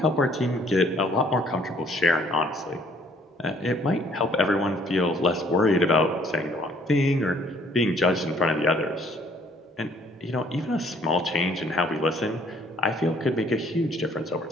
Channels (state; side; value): normal; both; correlation 0.61